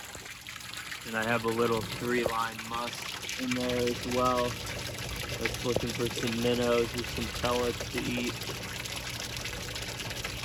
And I have a little 3-line musk in there as well. That's looking for some minnows or some pellets to eat.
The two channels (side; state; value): both; identical; correlation 1.00